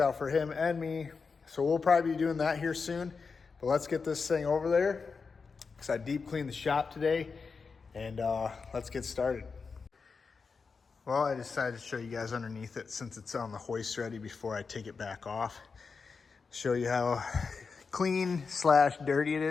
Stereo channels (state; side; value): quieter; right; 5.0 dB